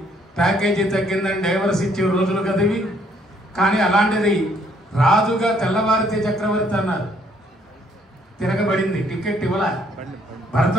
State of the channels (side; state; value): both; normal; correlation 0.66